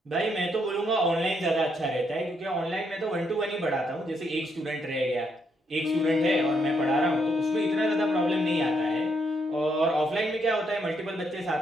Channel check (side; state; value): both; normal; correlation 0.75